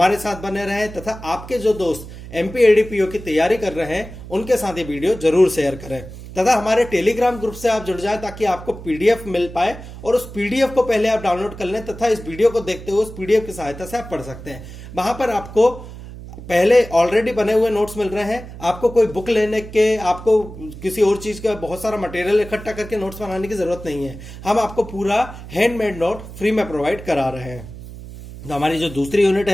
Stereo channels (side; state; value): right; noise; hum, 13 dB below the sound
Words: साथ बने रहें तथा आपके जो दोस्त एमपी एडीपीओ की तैयारी कर रहे हैं उनके साथ ये वीडियो जरूर शेयर करें तथा हमारे टेलीग्राम ग्रुप से आप जुड़ जाएं ताकि आपको पीडीएफ मिल पाए और उस पीडीएफ को पहले आप डाउनलोड कर लें तथा इस वीडियो को देखते हुए उस पीडीएफ की सहायता से आप पढ़ सकते हैं। वहां पर आपको पहले ऑलरेडी बने हुए नोट्स मिल रहे हैं, आपको कोई बुक लेने के, आपको किसी और चीज का बहुत सारा मटेरियल इकट्ठा करके नोट्स बनाने की जरूरत नहीं है। हम आपको पूरा हैंडमेड नोट फ्री में प्रोवाइड करा रहे हैं। तो हमारी जो दूसरी यूनिट